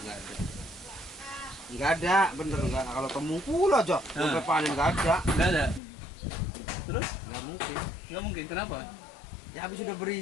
ada. Nggak ada, bener nggak. Kalau temungkul aja, sampai panen nggak ada. Nggak ada. Terus Nggak mungkin. nggak mungkin kenapa? Ya habis udah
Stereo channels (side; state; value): right; drops out; at 5.8 s